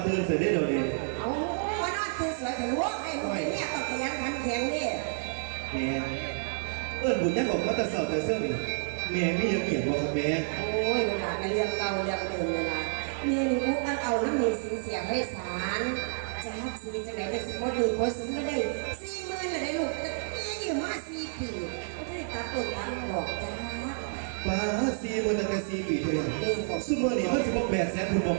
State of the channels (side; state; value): left; silent; 56 dB below the other